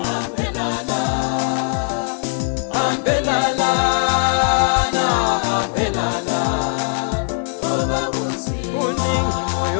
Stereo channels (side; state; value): right; silent; 62 dB below the other